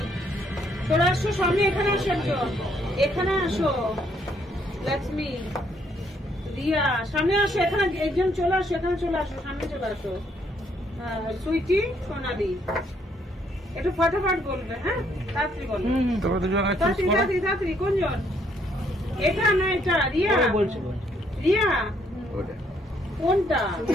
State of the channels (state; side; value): normal; both; correlation 0.70